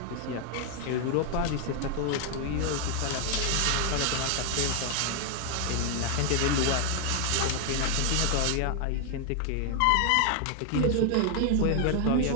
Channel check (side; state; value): both; different; correlation 0.00